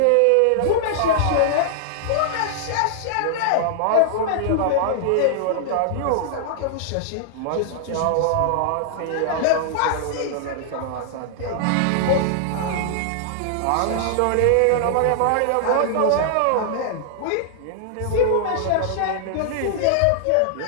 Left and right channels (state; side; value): different; both; correlation -0.01